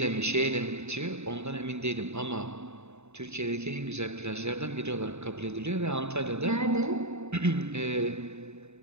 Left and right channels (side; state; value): left; late; 0.81 ms